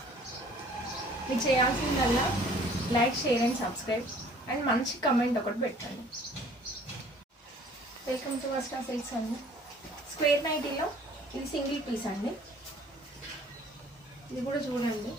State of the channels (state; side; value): normal; both; correlation 0.54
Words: మీరు చేయాల్సిందల్లా like, share and subscribe and మంచి కమెంట్ ఒకటి పెట్టండి. వెల్కమ్ టు వస్త్రా సిల్క్స్ అండి. స్క్వేర్ నైటీలో ఇది సింగిల్ పీస్ అండి. ఇది కూడా చూడండి